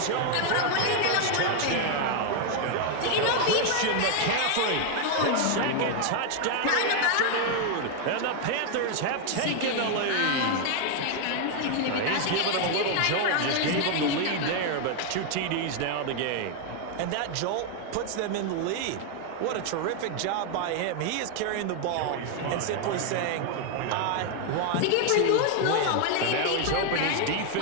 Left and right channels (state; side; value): different; both; correlation 0.00